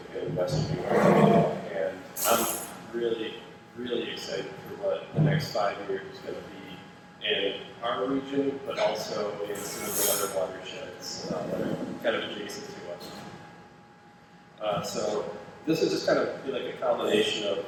in Western New York, and I'm really, really excited for what the next 5 years is going to be in our region, but also in some of the other watersheds that are kind of adjacent to us. So this is just kind of be like a combination of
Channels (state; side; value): identical; both; correlation 1.00